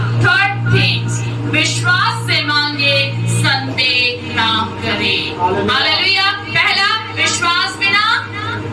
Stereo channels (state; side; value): identical; both; correlation 1.00